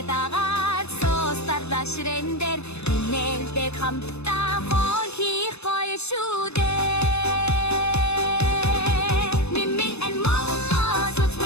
дагаад соостарда ширэндэр нэлдэг хамтдаа хол хийх гоё шүү дээ.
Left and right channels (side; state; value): right; late; 0.80 ms